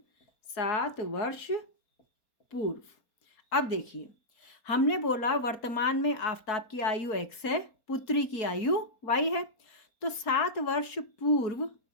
7 वर्ष पूर्व। अब देखिए, हमने बोला वर्तमान में आफताब की आयु x है, पुत्री की आयु y है। तो 7 वर्ष पूर्व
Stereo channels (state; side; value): late; right; 4.3 ms